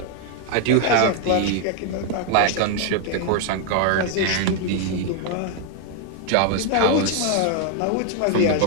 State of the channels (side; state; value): both; different; correlation 0.00